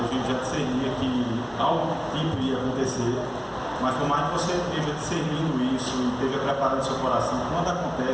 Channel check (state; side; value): identical; both; correlation 1.00